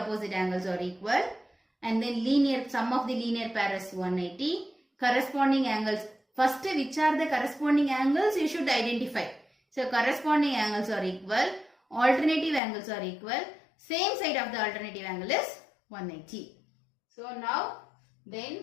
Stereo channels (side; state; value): right; drops out; at 12.6 s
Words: angles are equal, and then linear sum of the linear pair is 180. Corresponding angles, first which are the corresponding angles you should identify. So corresponding angles are equal, alternative angles are equal, same side of the alternative angle is 180. So now then